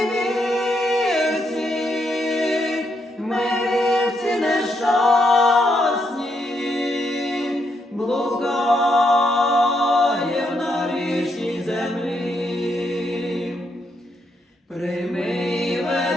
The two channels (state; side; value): normal; both; correlation 0.78